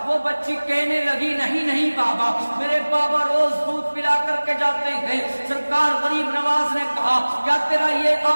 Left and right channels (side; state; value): both; inverted; correlation -1.00